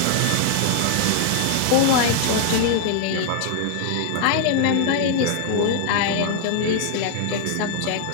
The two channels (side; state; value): both; different; correlation -0.01